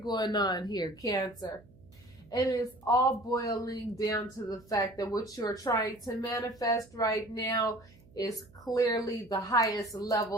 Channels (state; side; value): noise; right; hum, 25 dB below the sound